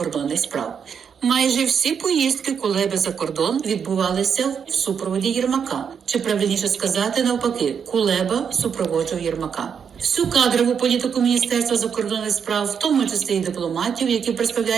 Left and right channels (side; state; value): left; quieter; 7.1 dB